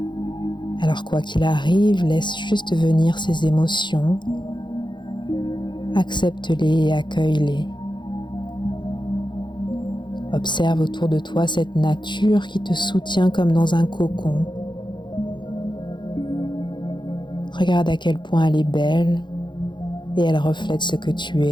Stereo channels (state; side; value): late; right; 0.22 ms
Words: Alors quoi qu'il arrive, laisse juste venir ces émotions, accepte-les et accueille-les. Observe autour de toi cette nature qui te soutient comme dans un cocon. Regarde à quel point elle est belle et elle reflète ce que tu